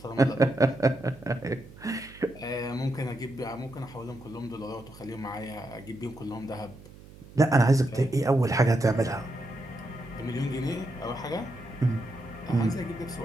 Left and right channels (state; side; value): noise; right; hum, 19 dB below the sound